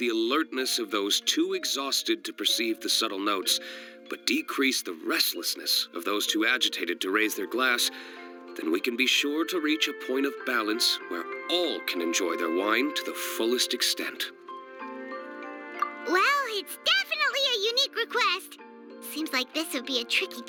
alertness of those too exhausted to perceive the subtle notes, but decrease the restlessness of those too agitated to raise their glass, then we can be sure to reach a point of balance where all can enjoy their wine to the fullest extent. Well, it's definitely a unique request. Seems like this would be a tricky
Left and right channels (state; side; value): identical; both; correlation 1.00